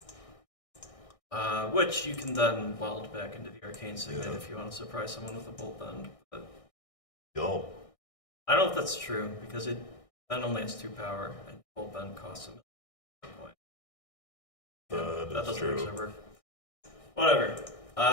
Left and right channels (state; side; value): late; right; 1.6 ms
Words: Which you can then weld back into the Arcane Signet if you want to surprise someone with a Bolt Bend. But Yo. I don't know if that's true, because it then only has 2 power, and Bolt Bend costs a point. That doesn't true. actually work. Whatever.